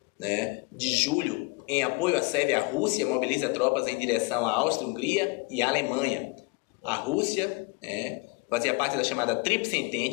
de julho, em apoio à Sérvia, a Rússia mobiliza tropas em direção à Áustria-Hungria e à Alemanha. A Rússia fazia parte da chamada Tríplice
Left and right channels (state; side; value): quieter; right; 27.9 dB